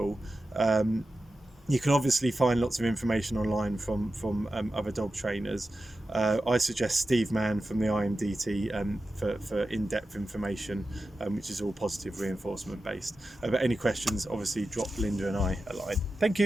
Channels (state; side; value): normal; both; correlation 0.92